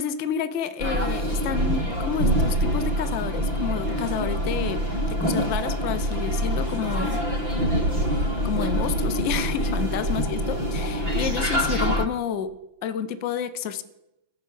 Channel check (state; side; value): late; left; 5.9 ms